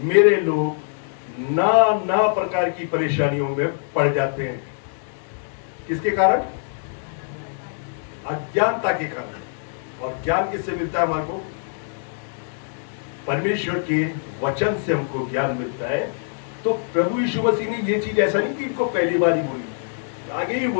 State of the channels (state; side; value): silent; right; digital silence